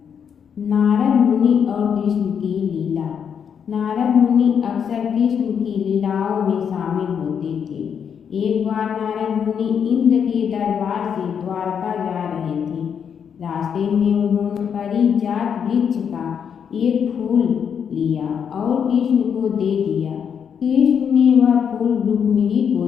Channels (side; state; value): right; quieter; 7.5 dB